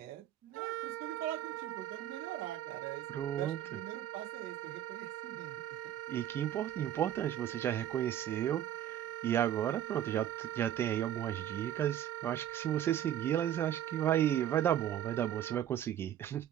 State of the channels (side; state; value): left; quieter; 11.4 dB